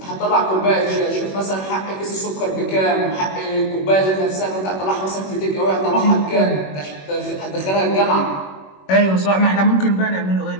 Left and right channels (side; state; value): right; late; 21 ms